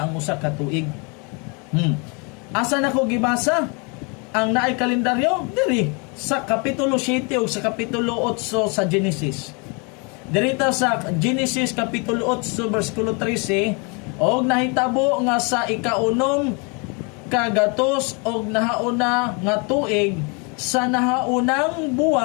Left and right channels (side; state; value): right; quieter; 32.8 dB